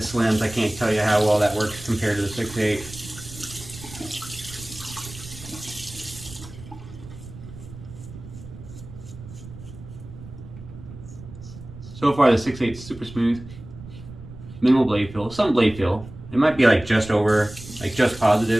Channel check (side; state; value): right; noise; rumble, 15 dB below the sound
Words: I can't tell you how well that works compared to the 6.8. So far the 6.8 is super smooth. Minimal blade feel, some blade feel. It might be like just over, like just